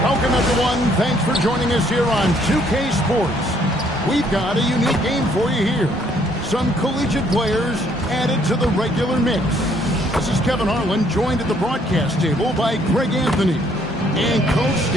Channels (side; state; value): both; normal; correlation 0.66